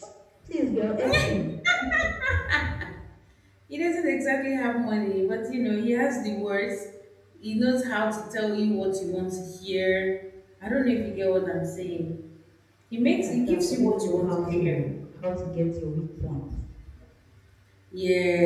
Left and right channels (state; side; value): identical; both; correlation 1.00